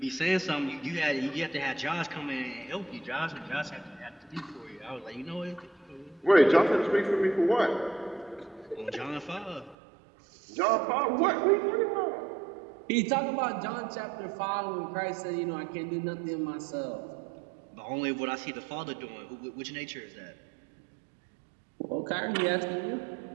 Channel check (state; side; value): drops out; left; at 9.8 s